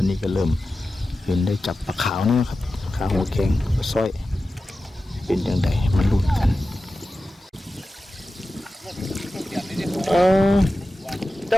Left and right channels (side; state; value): both; normal; correlation 0.94